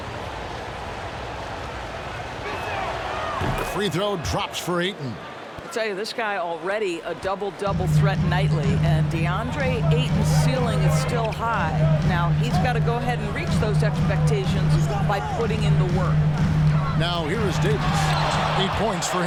Free throw drops for Ayton. I tell you, this guy already a double-double threat nightly, and DeAndre Ayton's ceiling is still high. Now, he's got to go ahead and reach those expectations by putting in the work. Now, here is Davis. 8 points for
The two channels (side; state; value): both; identical; correlation 1.00